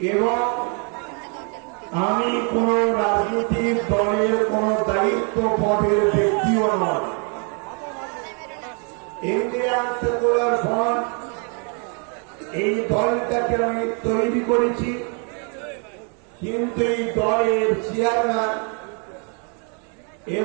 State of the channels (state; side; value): quieter; left; 38.5 dB